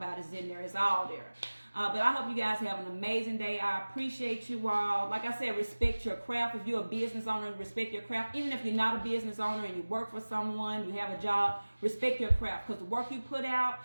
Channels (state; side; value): inverted; both; correlation -1.00